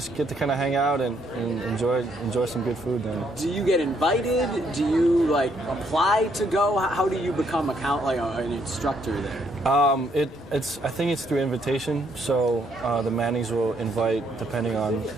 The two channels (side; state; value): both; normal; correlation 0.71